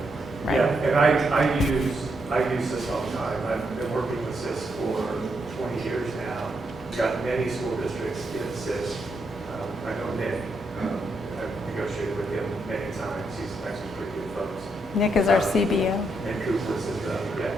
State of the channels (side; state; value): both; normal; correlation 0.80